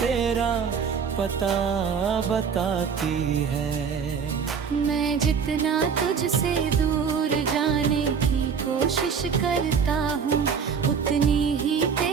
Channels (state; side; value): quieter; left; 6.4 dB